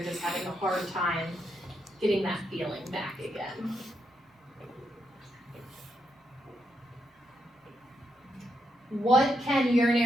just having a hard time getting that feeling back again. What can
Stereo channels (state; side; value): normal; both; correlation 0.81